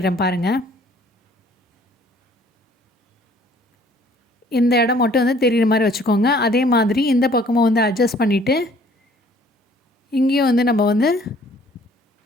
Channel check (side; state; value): both; normal; correlation 0.57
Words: பாருங்கள். இந்த இடம் மட்டும் வந்து தெரிகிற மாதிரி வச்சுக்கோங்க. அதே மாதிரி இந்த பக்கமும் வந்து அட்ஜஸ்ட் பண்ணிவிட்டு இங்கேயும் வந்து நம்ம வந்து